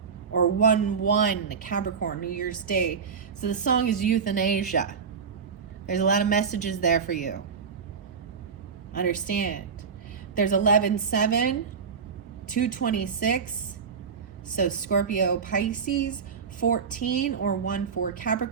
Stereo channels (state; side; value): quieter; left; 6.0 dB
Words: Or 1/1, Capricorn, New Year's Day. So the song is Euthanasia. There's a lot of messages there for you. Understand. There's 11/7, 2/26. So Scorpio, Pisces, 14 or 1/4